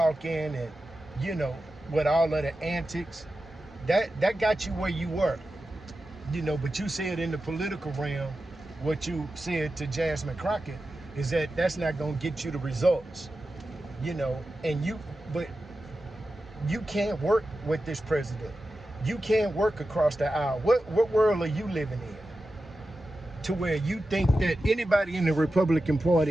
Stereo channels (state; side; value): normal; both; correlation 0.92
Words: and with all of the antics. That got you where you were. But you said in the political realm, what you said to Jasmine Crockett is that that's not going to get you the results. But you can't work with this president. You can't work across the aisle. What world are you living in to where you think that anybody in the Republican